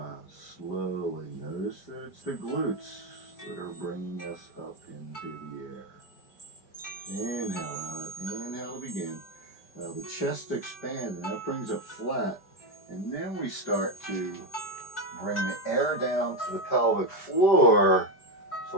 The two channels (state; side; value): late; right; 5.1 ms